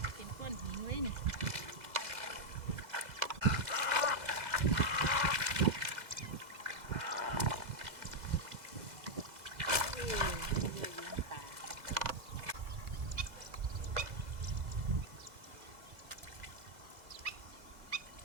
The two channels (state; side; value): late; left; 2.0 ms